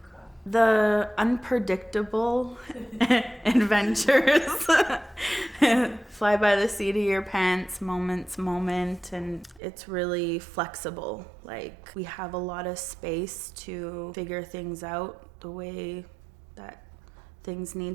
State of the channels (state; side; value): drops out; left; at 9.6 s